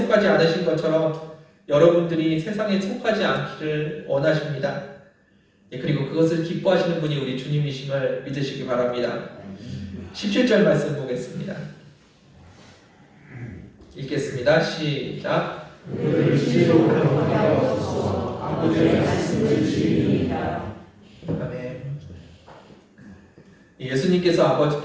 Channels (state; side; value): identical; both; correlation 1.00